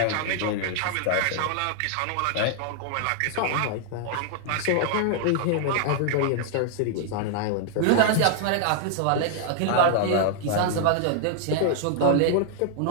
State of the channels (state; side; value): different; both; correlation -0.01